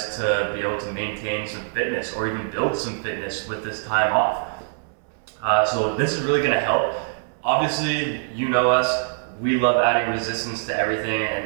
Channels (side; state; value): left; silent; 63 dB below the other